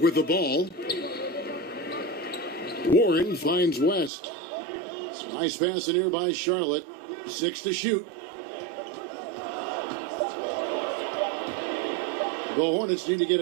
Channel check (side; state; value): left; drops out; at 4.1 s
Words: with the ball. Warren finds West. Nice pass in here by Charlotte. 6 to shoot. The Hornets need to get